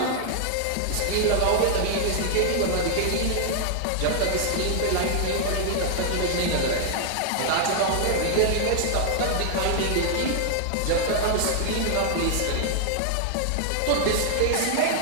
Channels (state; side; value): different; both; correlation -0.01